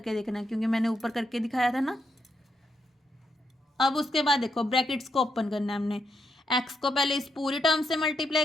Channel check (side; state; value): both; normal; correlation 0.81